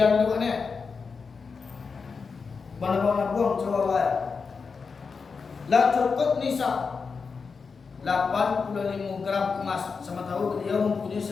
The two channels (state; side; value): quieter; right; 5.1 dB